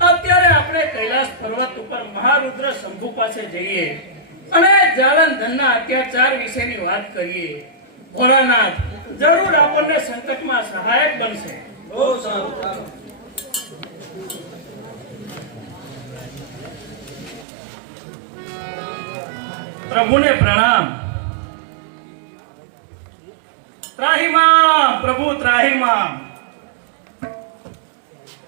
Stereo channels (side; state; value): left; drops out; at 17.4 s